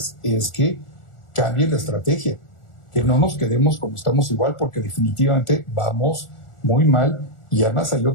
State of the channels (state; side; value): late; right; 1.4 ms